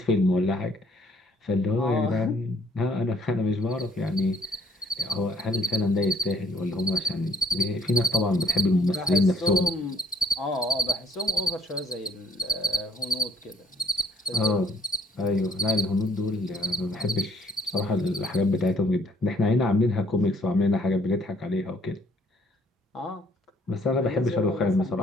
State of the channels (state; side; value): normal; both; correlation 0.61